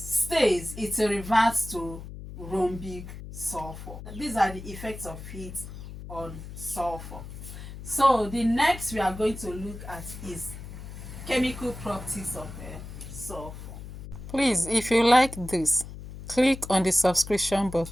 it reverts to rhombic sulfur. These are the effects of heat on sulfur. So the next we are going to look at is chemical properties of sulfur. Please, if you like this, click on the subscription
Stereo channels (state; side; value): noise; left; hum, 12 dB below the sound